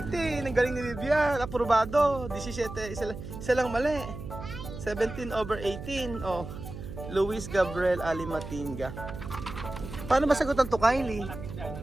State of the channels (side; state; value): right; noise; hum, 10 dB below the sound